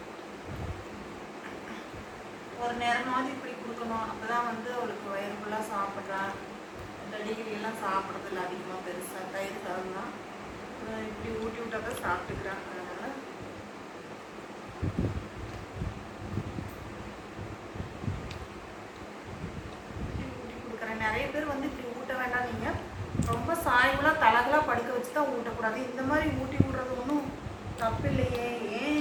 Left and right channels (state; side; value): identical; both; correlation 1.00